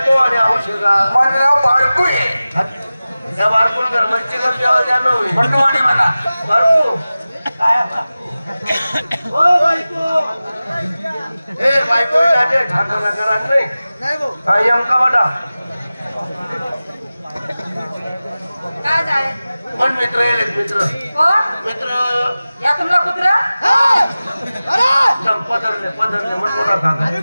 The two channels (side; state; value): both; inverted; correlation -0.97